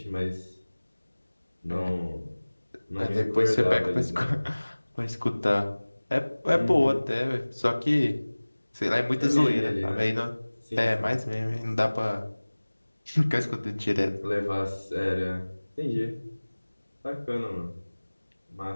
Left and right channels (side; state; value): both; inverted; correlation -1.00